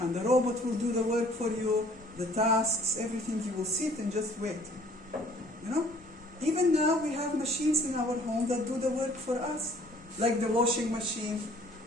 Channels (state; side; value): normal; both; correlation 0.56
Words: And the robot will do the work for you, the tasks, everything. You will sit and just wait. You know? Even now we have machines in our home that do the work for us. Like the washing machine.